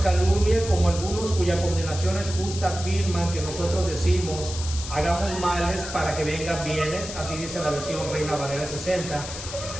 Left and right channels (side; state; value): left; noise; hiss, 9 dB below the sound